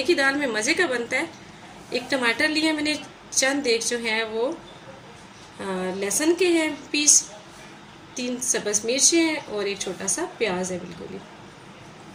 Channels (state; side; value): identical; both; correlation 1.00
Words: की दाल में मज़े का बनता है। एक टमाटर लिया मैंने, चंद एक जो है वो लहसुन के हैं पीस, 3 सब्ज़ मिर्चें हैं और एक छोटा सा प्याज है बिल्कुल ही।